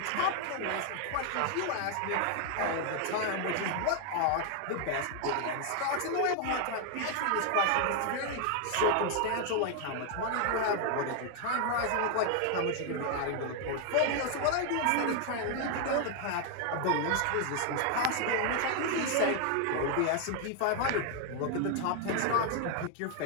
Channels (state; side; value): different; both; correlation 0.00